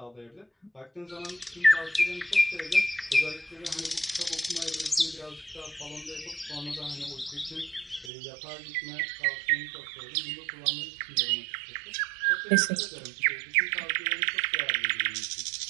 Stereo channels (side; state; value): left; drops out; at 8.1 s